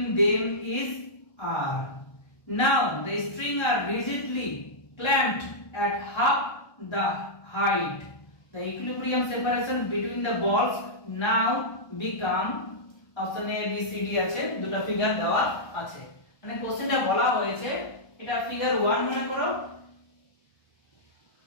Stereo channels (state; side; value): late; right; 1.2 ms